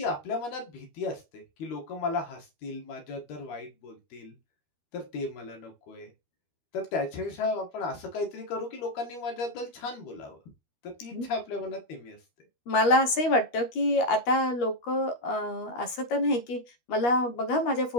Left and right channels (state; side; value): late; right; 13 ms